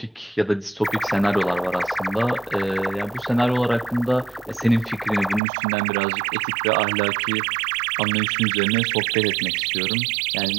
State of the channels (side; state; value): left; drops out; at 5.4 s